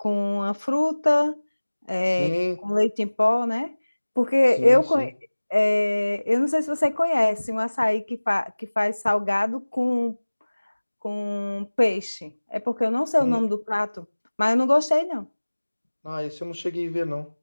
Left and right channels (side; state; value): both; inverted; correlation -1.00